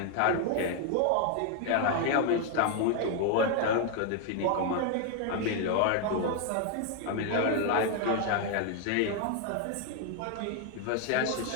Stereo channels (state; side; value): different; both; correlation 0.00